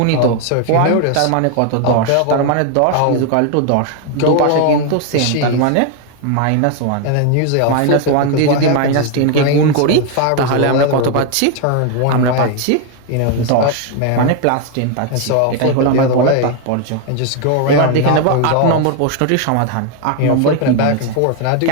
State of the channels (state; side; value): different; both; correlation 0.01